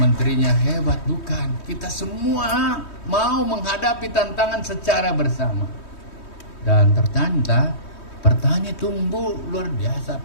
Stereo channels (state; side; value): late; right; 3.2 ms